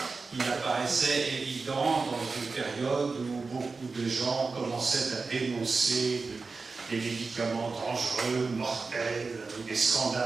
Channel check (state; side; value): quieter; left; 4.2 dB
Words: il apparaissait évident dans une période où beaucoup de gens commençaient à dénoncer des médicaments dangereux, mortels, où des